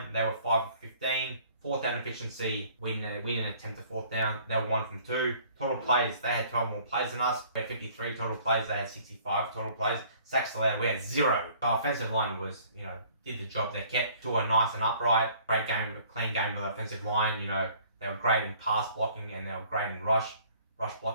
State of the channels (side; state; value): both; inverted; correlation -0.55